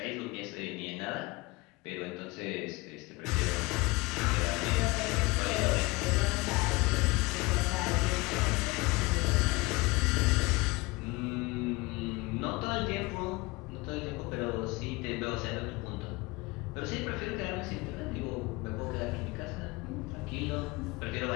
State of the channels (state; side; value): quieter; right; 23.7 dB